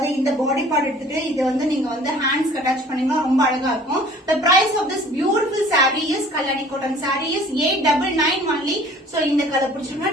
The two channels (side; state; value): both; normal; correlation 0.50